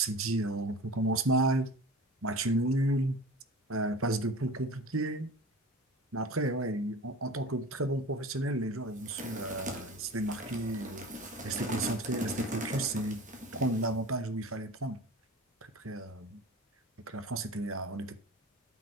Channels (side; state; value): both; normal; correlation 0.36